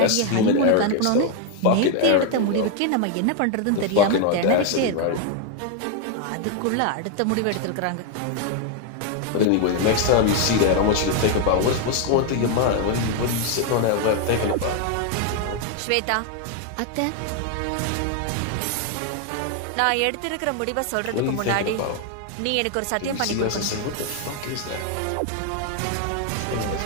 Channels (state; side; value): different; both; correlation 0.01